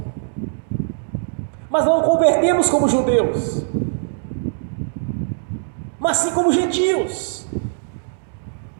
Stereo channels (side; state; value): left; silent; digital silence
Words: mas não convertemos como judeus, mas sim como gentios.